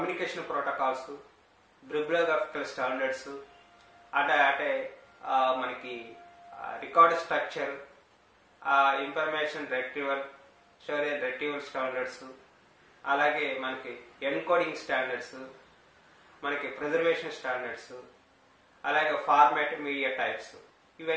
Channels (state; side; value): identical; both; correlation 1.00